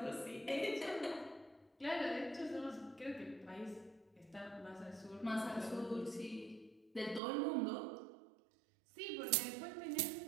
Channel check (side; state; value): left; drops out; at 7.2 s